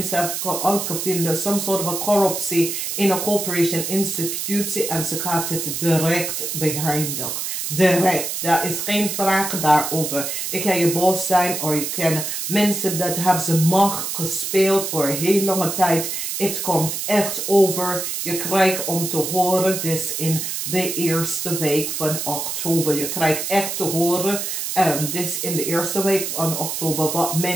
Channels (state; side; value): noise; right; hiss, 3 dB below the sound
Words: hebben uitgevonden some sort of corruptie in een corporation institutie en ze gaat het direct beëindigen. Direct. Daar is geen vraag daarover. Ik kan je boos zijn of je kan mensen dat hebben ze macht gespeeld voor een heel lange tijd. Het komt echt over. Je krijgt om te horen dus in de eerste week van oktober. Je krijgt echt te horen dus in de eerste week van oktober wat